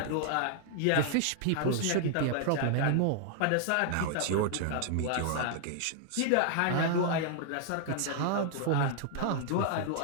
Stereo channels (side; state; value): both; different; correlation 0.00